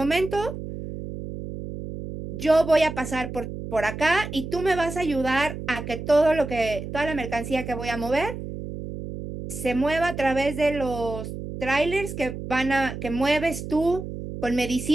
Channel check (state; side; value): noise; right; hum, 8 dB below the sound